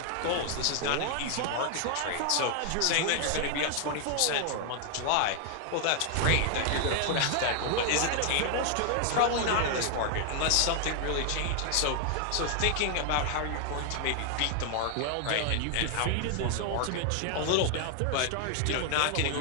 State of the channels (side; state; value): both; different; correlation 0.00